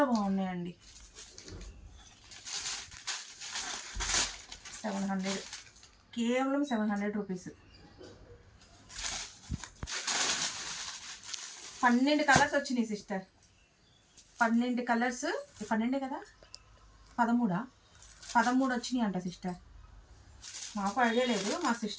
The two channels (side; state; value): both; identical; correlation 1.00